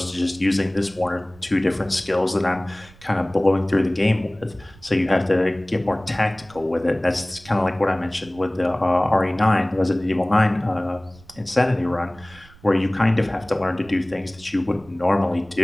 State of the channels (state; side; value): noise; right; rumble, 24 dB below the sound